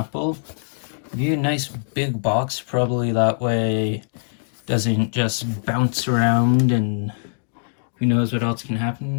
give you a nice big box, probably that way it doesn't just bounce around and who knows what else can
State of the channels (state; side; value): silent; right; digital silence